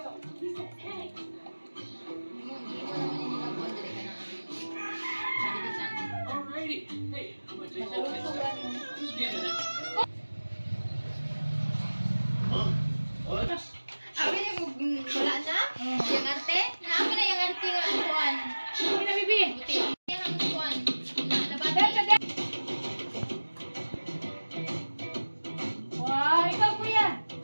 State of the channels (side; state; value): both; inverted; correlation -1.00